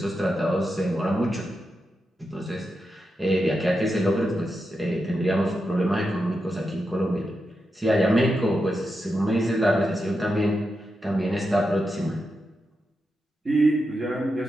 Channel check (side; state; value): both; normal; correlation 0.87